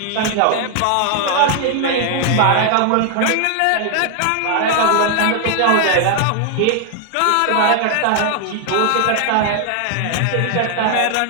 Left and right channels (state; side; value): different; both; correlation 0.00